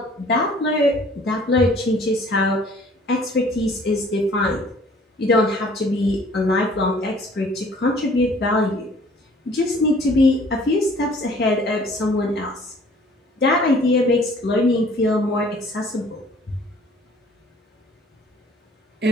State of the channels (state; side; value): normal; both; correlation 0.54